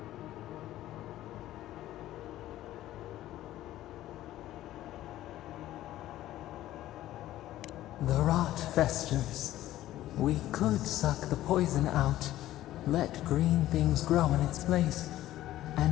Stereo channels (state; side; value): quieter; right; 14.3 dB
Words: The rot festers. We could suck the poison out, let green things grow in its place,